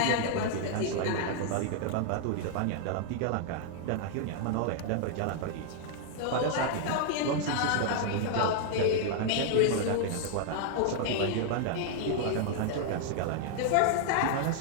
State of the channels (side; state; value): both; different; correlation 0.00